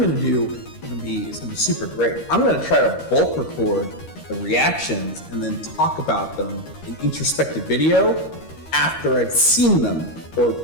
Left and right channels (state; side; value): late; right; 13 ms